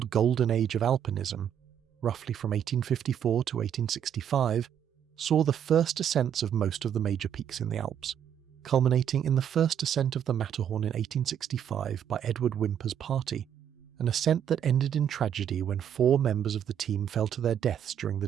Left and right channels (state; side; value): quieter; left; 9.2 dB